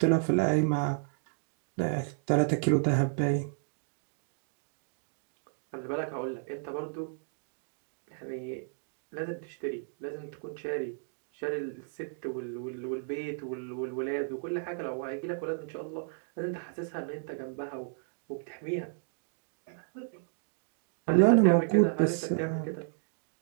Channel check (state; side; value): silent; left; digital silence